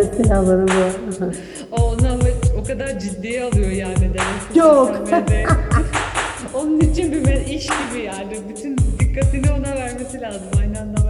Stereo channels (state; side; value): identical; both; correlation 1.00